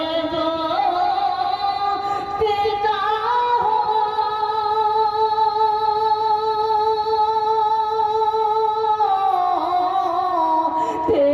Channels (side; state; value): both; identical; correlation 1.00